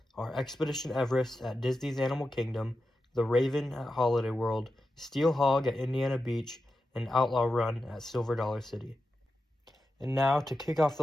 are Expedition Everest at Disney's Animal Kingdom, The Raven at Holiday World, Steel Hog at Indiana Beach, and Outlaw Run at Silver Dollar City. And now, to kick off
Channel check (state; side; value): normal; both; correlation 0.90